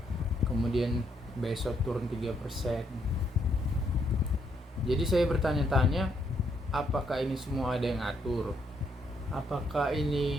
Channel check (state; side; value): normal; both; correlation 0.73